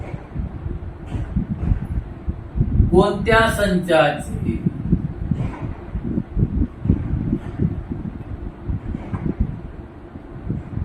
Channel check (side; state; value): both; identical; correlation 1.00